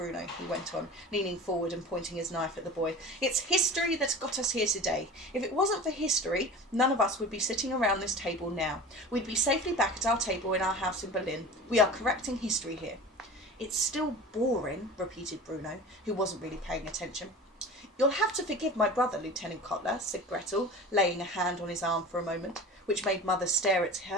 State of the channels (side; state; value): both; normal; correlation 0.36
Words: he went on, leaning forward and pointing his knife at the boy. It's history that's got us here today. If it wasn't for history, none of us would be sitting around this table now. We'd be safely back at our table in our house in Berlin. We are correcting history here. It's still boring, repeated Bruno, who wasn't really paying attention. You'll have to forgive my brother, Lieutenant Kotler, said Gretel, laying a hand on his arm for a moment, which made Mother stare at